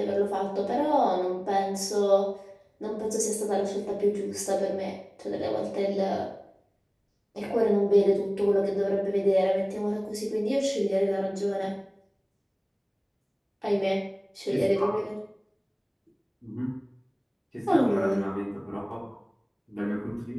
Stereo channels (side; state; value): both; identical; correlation 1.00